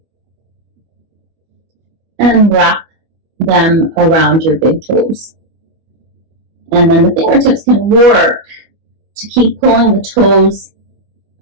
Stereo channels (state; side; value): late; left; 25 ms